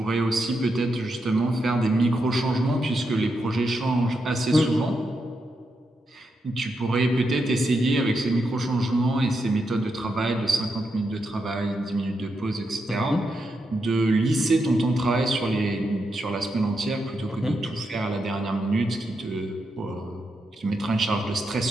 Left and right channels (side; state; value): both; normal; correlation 0.84